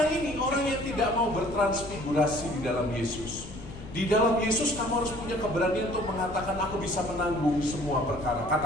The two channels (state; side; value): noise; left; rumble, 13 dB below the sound